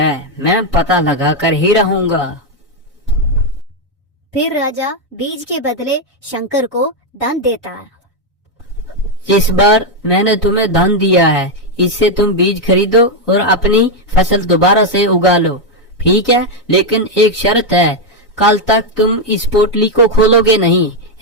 मैं पता लगा कर ही रहूंगा। फिर राजा बीज के बदले शंकर को धन देता है। इस बार मैंने तुम्हें धन दिया है, इससे तुम बीज खरीदो और अपनी फसल दोबारा से उगा लो, ठीक है? लेकिन एक शर्त है, कल तक तुम इस पोटली को खोलोगे नहीं,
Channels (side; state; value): both; normal; correlation 0.03